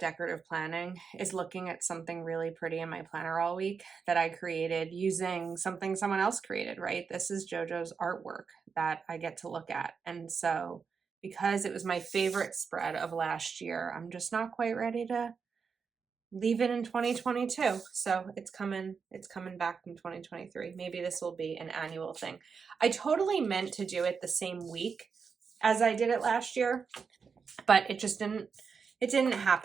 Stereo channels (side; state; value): left; quieter; 5.8 dB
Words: planning is looking at something really pretty in my planner all week that I created using something someone else created, right? This is JoJo's artwork that I get to look at. And so because it was my favorite spread of last year, I'm just not quite ready to leave it in 2022. So it's coming back in 2023. Maybe this will be an annual thing. I totally meant to do it the same week as I did it last year, but it didn't